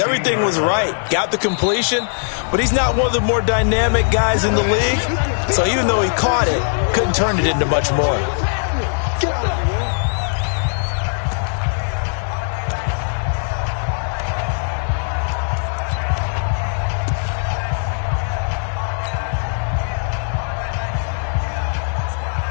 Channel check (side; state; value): right; silent; digital silence